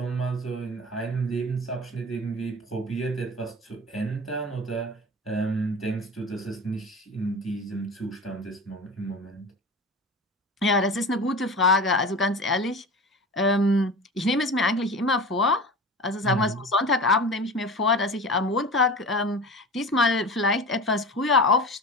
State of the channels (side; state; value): both; normal; correlation 0.33